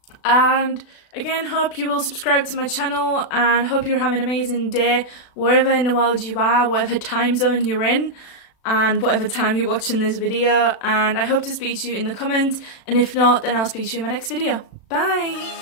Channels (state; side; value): late; right; 36 ms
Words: And again, hope you will subscribe to my channel, and hope you're having an amazing day wherever in the world you are, whatever time zone you're in, and whatever time you're watching this video. And I hope to speak to you in the comments, and if not, then I'll speak to you in my next video.